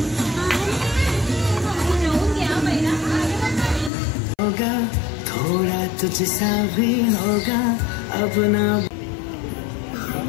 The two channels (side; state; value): right; drops out; at 3.9 s